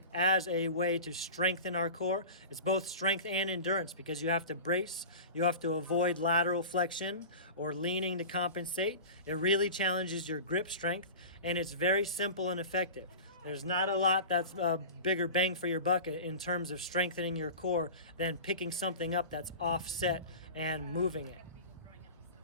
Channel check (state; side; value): inverted; both; correlation -0.33